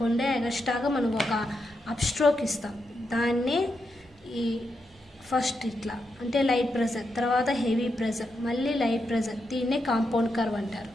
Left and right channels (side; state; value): both; normal; correlation 0.84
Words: ఎక్స్ట్రాగా మనం ఒక అప్ స్ట్రోక్ ఇస్తాం. దాన్ని ఈ ఫస్ట్ ఇట్లా అంటే లైట్ ప్రెజర్, తర్వాత హెవీ ప్రెజర్, మళ్ళీ లైట్ ప్రెజర్, దీన్నే కాంపౌండ్ కర్వ్ అంటారు.